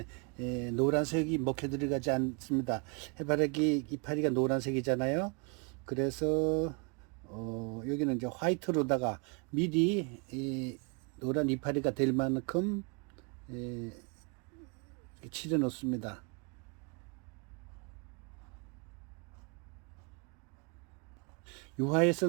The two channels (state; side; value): quieter; left; 34.8 dB